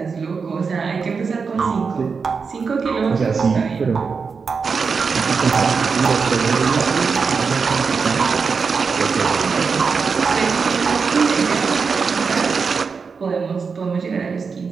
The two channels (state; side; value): quieter; left; 5.3 dB